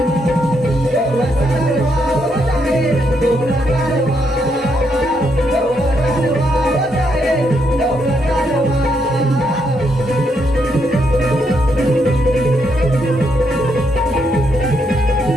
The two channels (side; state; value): both; normal; correlation 0.77